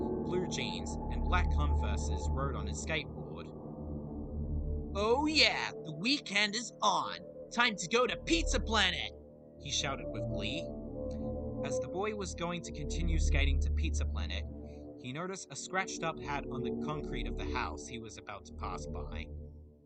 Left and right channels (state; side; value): identical; both; correlation 1.00